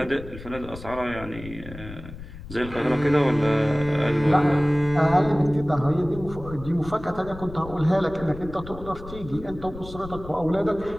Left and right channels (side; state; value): left; noise; rumble, 14 dB below the sound